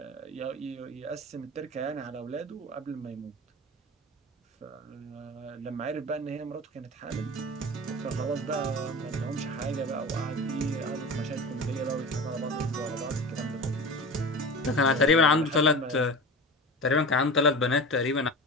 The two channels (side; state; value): both; normal; correlation 0.31